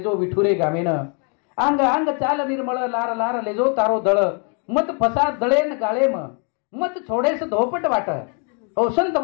विठुरे गामेन अंग अंग चाल निर्मळ लार लार लेजो तारो दळ मत फसा दळेन गाळेम मत छोडेस धोपट वाट हो संत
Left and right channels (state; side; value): quieter; right; 38.2 dB